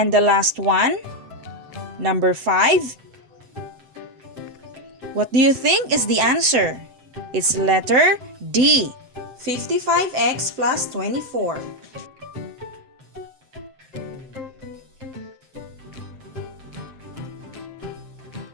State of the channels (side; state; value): left; late; 8.0 ms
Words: the last one, number 5, What do you think is the answer? It's letter D, 55x plus 24.